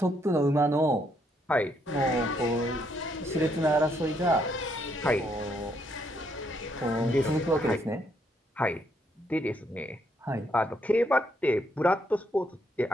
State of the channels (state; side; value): normal; both; correlation 0.73